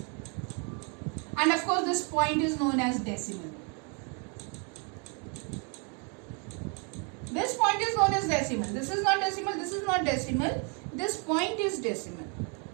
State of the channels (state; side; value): quieter; left; 36.1 dB